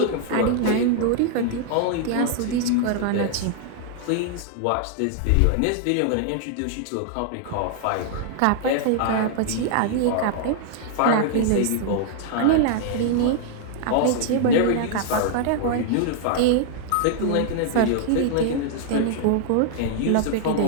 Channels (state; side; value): different; both; correlation -0.01